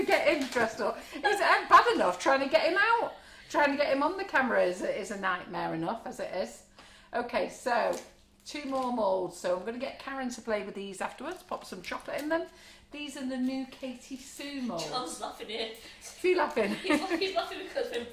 get him dressed up. It's bad enough trying to get him out. Trying to get him on the camera is a nightmare enough as it is. Okay, so 2 more moulds. So I'm going to get Karen to play with these afterwards. Pop some chocolate in them. These are the new Katie Sue moulds. John's laughing here. Are you laughing? He's laughing because when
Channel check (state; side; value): identical; both; correlation 1.00